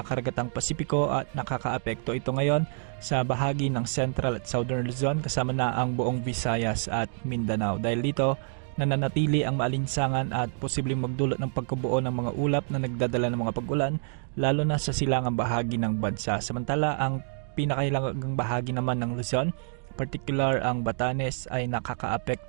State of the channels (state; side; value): silent; left; digital silence